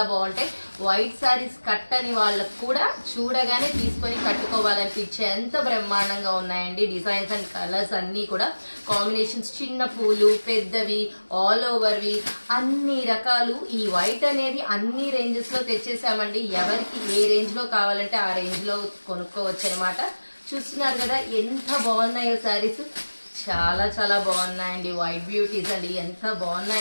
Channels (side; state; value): both; inverted; correlation -1.00